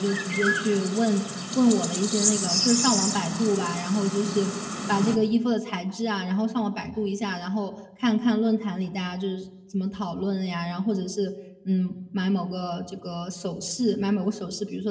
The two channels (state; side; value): identical; both; correlation 1.00